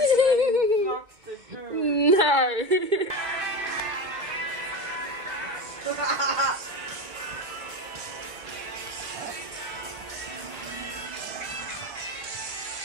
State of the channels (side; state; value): left; late; 2.1 ms